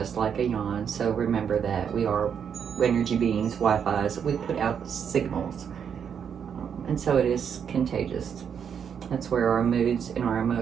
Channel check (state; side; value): quieter; left; 7.6 dB